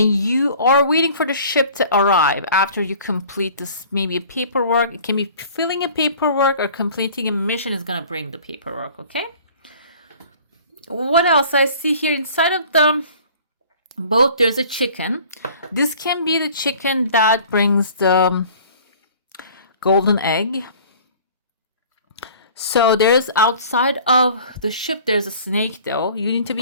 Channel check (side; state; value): both; inverted; correlation -0.48